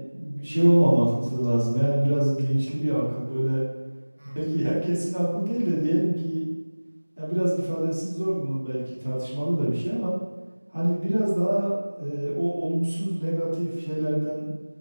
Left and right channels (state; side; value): inverted; both; correlation -1.00